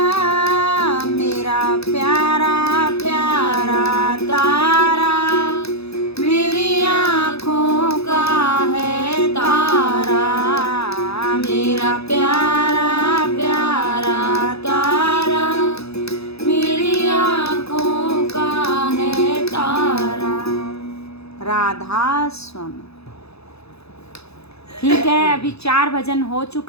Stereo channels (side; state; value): right; late; 0.79 ms